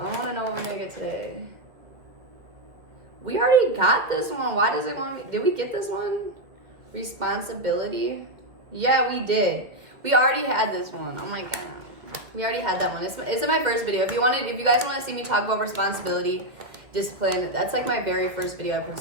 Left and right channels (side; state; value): left; late; 1.8 ms